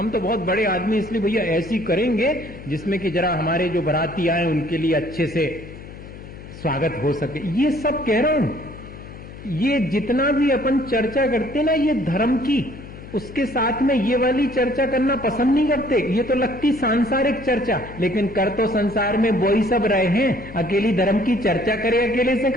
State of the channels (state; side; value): noise; left; hum, 15 dB below the sound